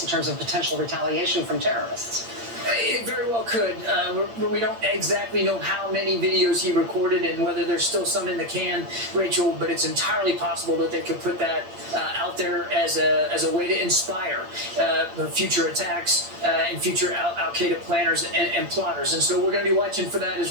in terms of potential retaliation from terrorists? It very well could. We don't exactly know how many videos he recorded and whether there's still some in the can, Rachel, but it's entirely possible that they could put that out there as a way to inspire future attacks and future Al-Qaeda planners and plotters. And so we're going to be watching for that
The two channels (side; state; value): left; late; 8.7 ms